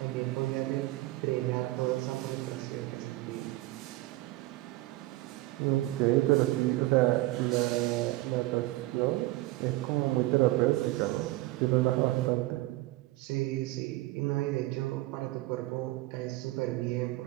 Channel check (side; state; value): left; quieter; 18.7 dB